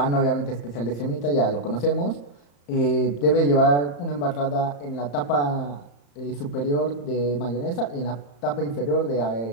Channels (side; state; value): right; late; 35 ms